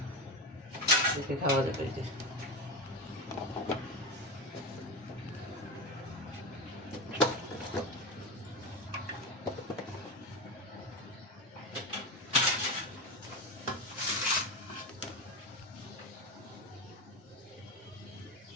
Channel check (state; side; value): normal; both; correlation 0.18